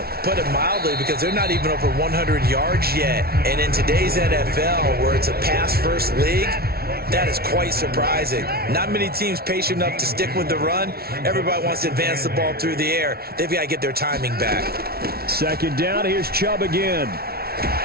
Put it mildly, because they're not even over 100 yards yet. And in today's NFL, where it's a pass-first league, that is quite surprising. Not many teams patient enough to stick with the run. Everybody wants to advance the ball through the air. They've got to get their timing back. 2nd down, here's Chubb again.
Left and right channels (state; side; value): late; left; 0.44 ms